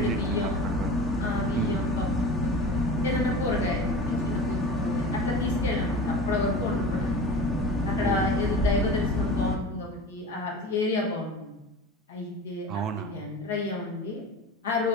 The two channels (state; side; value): normal; both; correlation 0.34